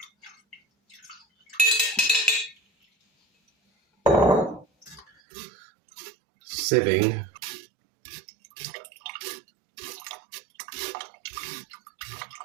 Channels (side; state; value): left; drops out; at 5.1 s